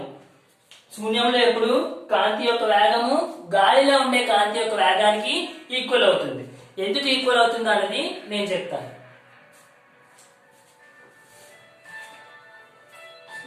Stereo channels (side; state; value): both; identical; correlation 1.00